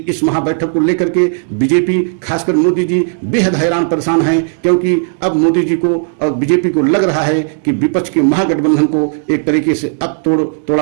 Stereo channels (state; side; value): silent; left; digital silence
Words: इस महाबैठक को लेकर के बीजेपी खासकर मोदी जी बेहद हैरान परेशान हैं, क्योंकि अब मोदी जी को और बीजेपी को लग रहा है कि विपक्ष के महागठबंधन को एक तरीके से अब